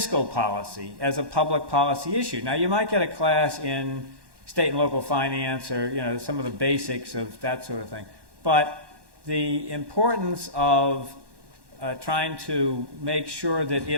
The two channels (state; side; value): late; left; 1.1 ms